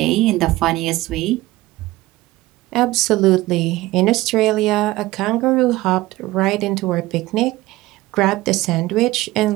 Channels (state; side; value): quieter; left; 18.2 dB